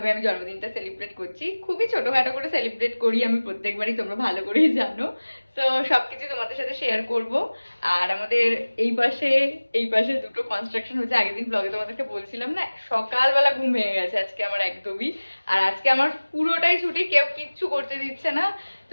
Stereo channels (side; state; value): both; inverted; correlation -1.00